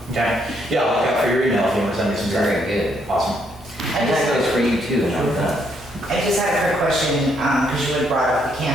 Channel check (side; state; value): both; normal; correlation 0.73